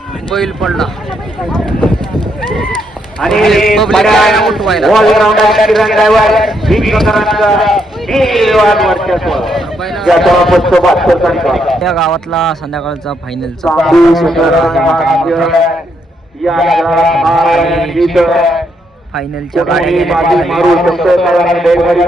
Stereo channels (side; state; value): both; normal; correlation 0.76